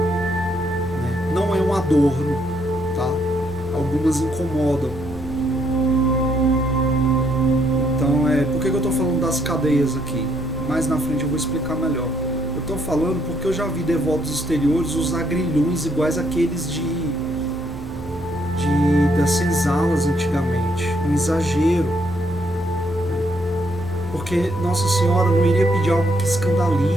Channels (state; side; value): normal; both; correlation 0.72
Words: Não é um adorno, tá? Algumas incomodam. Então, por que eu estou falando das cadeias aqui? Mais na frente eu vou explicar melhor. Eu estou falando porque eu já vi devotos exteriores usar grilhões iguais àqueles das senzalas antigamente, um exagero, porque Nossa Senhora não iria pedir algo que